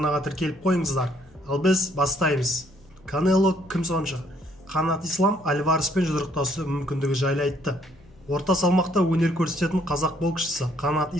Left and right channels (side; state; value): both; normal; correlation 0.66